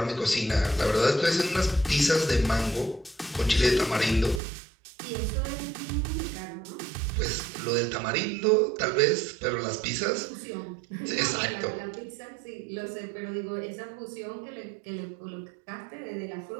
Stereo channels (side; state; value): left; drops out; at 4.4 s